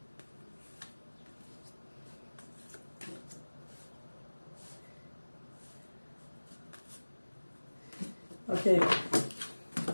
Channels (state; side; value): inverted; both; correlation -1.00